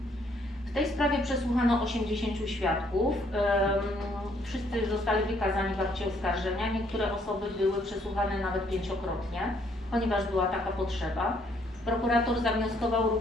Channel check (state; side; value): normal; both; correlation 0.67